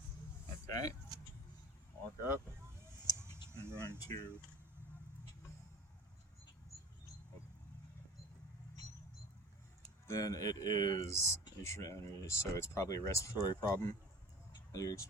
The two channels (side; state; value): both; normal; correlation 0.39